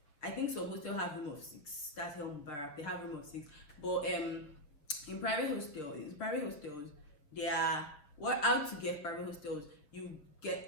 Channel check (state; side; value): late; right; 7.0 ms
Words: I think some hostels have room of 6. That's Helm Barak, they have room of 6. But in private hostels, they are how to get private hostels. You get